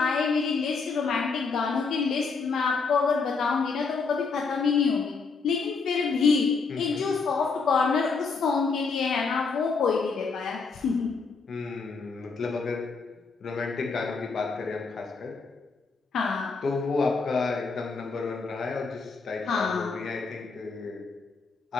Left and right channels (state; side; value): quieter; right; 4.7 dB